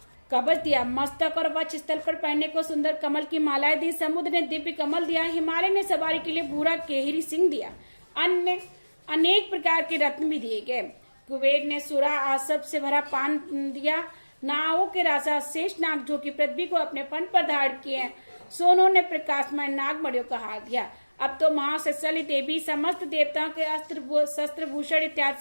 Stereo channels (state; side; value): inverted; both; correlation -1.00